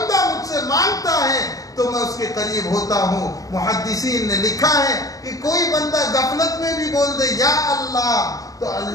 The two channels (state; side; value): late; right; 0.17 ms